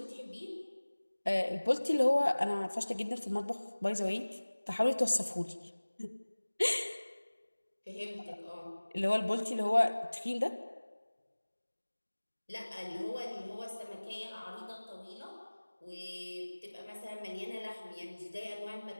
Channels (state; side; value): inverted; both; correlation -1.00